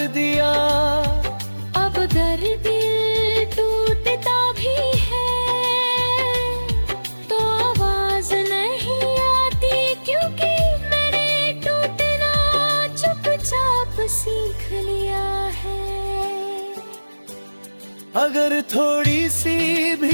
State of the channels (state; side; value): inverted; both; correlation -1.00